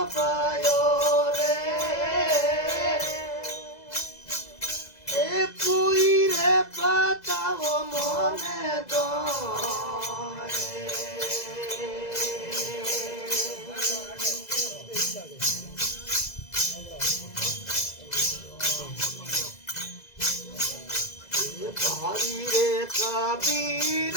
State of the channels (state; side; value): late; right; 2.0 ms